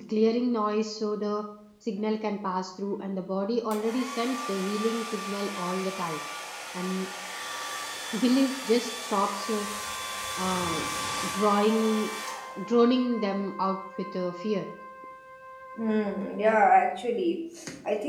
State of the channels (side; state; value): both; identical; correlation 1.00